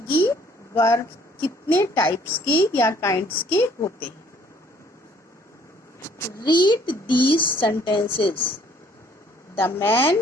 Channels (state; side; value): normal; both; correlation 0.60